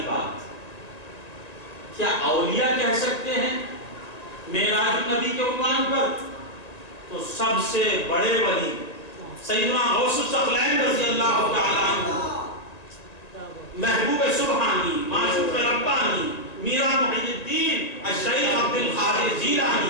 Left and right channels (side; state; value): right; late; 1.8 ms